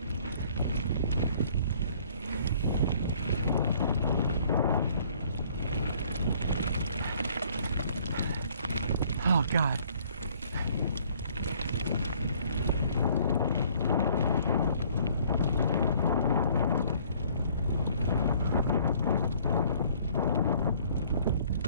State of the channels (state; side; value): inverted; both; correlation -0.59